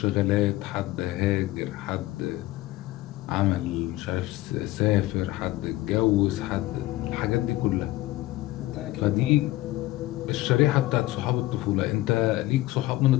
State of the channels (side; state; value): right; quieter; 17.0 dB